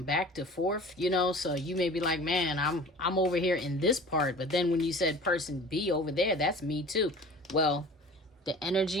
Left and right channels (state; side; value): normal; both; correlation 0.42